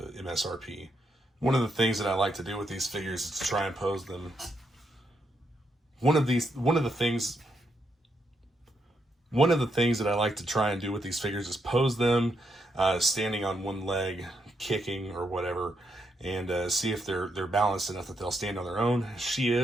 One of the things that I like to do with these figures is to try and pose them. One of the things that I like to try and do with these figures is pose them standing on one leg, kicking or whatever, and see if they're balanced enough that they'll stand on their own. She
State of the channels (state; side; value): normal; both; correlation 0.80